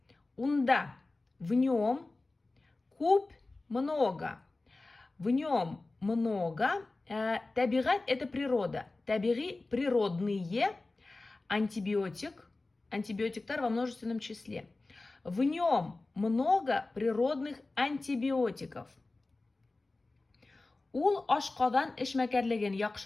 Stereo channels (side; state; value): right; quieter; 3.2 dB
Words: Унда в нем куб много. В нем много. Табигать это природа. Табиги природные. Антибиотиктар во множественном числе. В нем много природных антибиотиков. Ул ашкадан эшмәкәрлеген